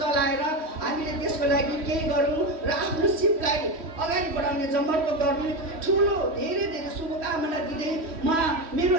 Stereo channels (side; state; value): left; late; 3.1 ms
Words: चलाएर हामीले त्यसको लागि केही गरौँ र आफ्नो सिपलाई अगाडि बढाउने जमर्को गर्ने ठुलो धेरै शुभकामना दिँदै म मेरो